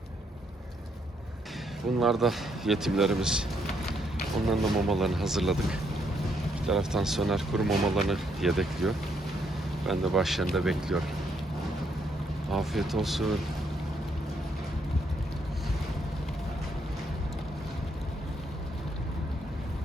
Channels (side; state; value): both; normal; correlation 0.73